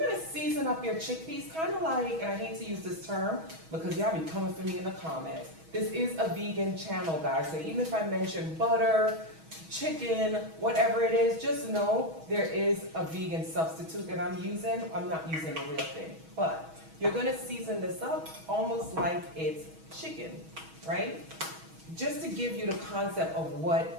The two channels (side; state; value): left; late; 6.2 ms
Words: season up your chickpeas, kind of like, and I hate to use this term because y'all be coming for me in the comments. This is a vegan channel, guys, so even if I mention butter, chicken, whatever it is, just know there is a vegan substitute that I'm using. I'm not using the real thing, but you're gonna season this up almost like it's chicken, right? Just to give you the concept of